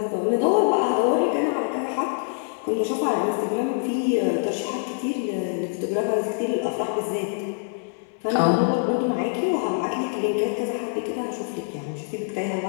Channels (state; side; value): silent; right; digital silence